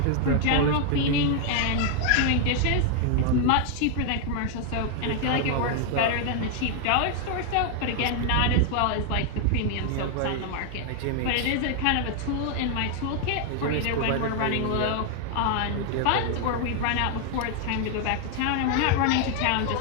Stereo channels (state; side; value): different; both; correlation 0.00